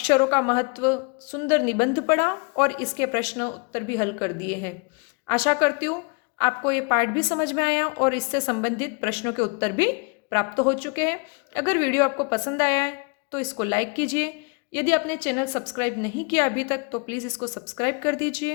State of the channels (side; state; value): right; quieter; 34.2 dB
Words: का महत्व सुंदर निबंध पढ़ा और इसके प्रश्न उत्तर भी हल कर दिए हैं। आशा करती हूँ आपको ये पाठ भी समझ में आया और इससे संबंधित प्रश्नों के उत्तर भी प्राप्त हो चुके हैं। अगर वीडियो आपको पसंद आया है तो इसको लाइक कीजिए। यदि आपने चैनल सब्सक्राइब नहीं किया अभी तक तो प्लीज़ इसको सब्सक्राइब कर